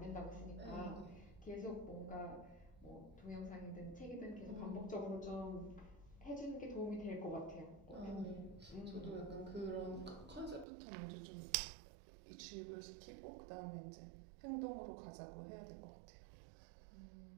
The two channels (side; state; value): left; drops out; at 10.7 s